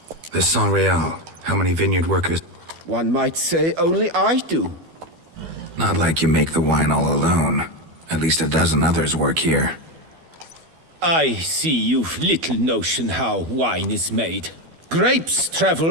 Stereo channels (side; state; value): left; late; 12 ms